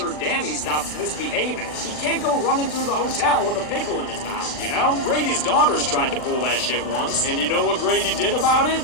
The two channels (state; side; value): late; right; 40 ms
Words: Danny stops misbehaving. He can't go running through the hotel with a pickle in his mouth, you know? Grady's daughters tried to pull that shit once, and you know what Grady did about it?